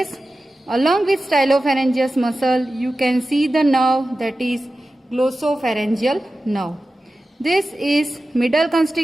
Along with stylopharyngeus muscle, you can see the nerve, that is glossopharyngeal nerve. This is middle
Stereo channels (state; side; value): normal; both; correlation 0.94